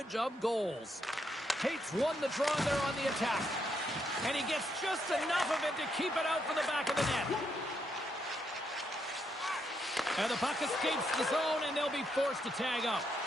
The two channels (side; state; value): both; normal; correlation 0.78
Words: of goals. Tate's won the draw there on the attack. And he gets just enough of it to keep it out for the back of the net. And the puck escapes the zone, and they'll be forced to tag up.